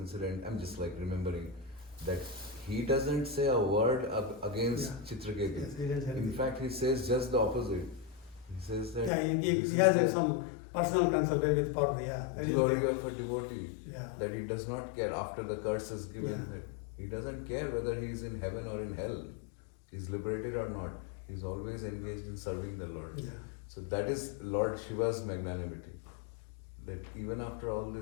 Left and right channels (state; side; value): drops out; right; at 9.1 s